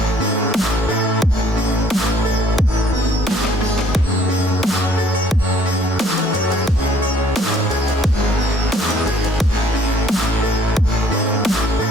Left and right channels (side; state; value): both; normal; correlation 0.60